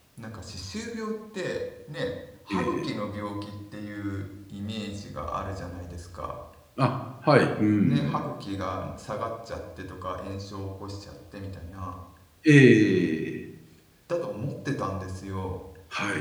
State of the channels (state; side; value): identical; both; correlation 1.00